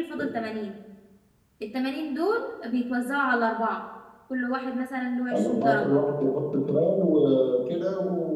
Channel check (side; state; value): both; identical; correlation 1.00